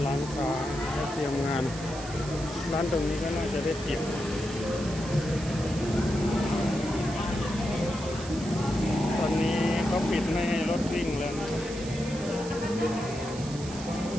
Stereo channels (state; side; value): noise; right; hiss, 14 dB below the sound